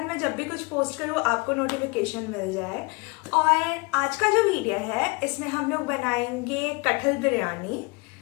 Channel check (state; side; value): quieter; right; 28.4 dB